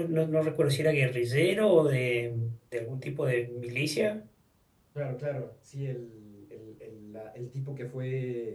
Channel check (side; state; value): both; identical; correlation 1.00